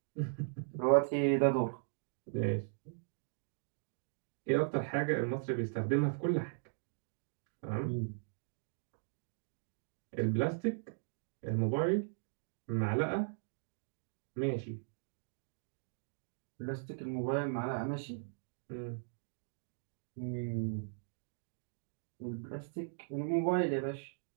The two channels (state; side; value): silent; left; digital silence